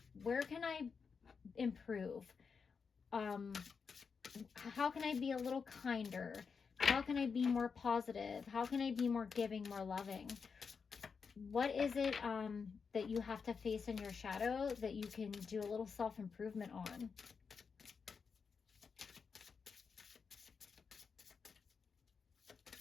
where can I improve? How can I be a little kinder? How can I be more positive? How can I be more giving, more loving? What is it that you have to face in your shadow that you can do a little self-improvement on?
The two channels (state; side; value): quieter; right; 5.6 dB